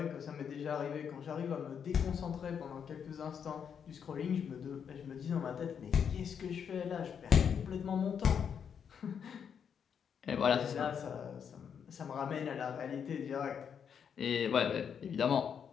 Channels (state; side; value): quieter; right; 7.5 dB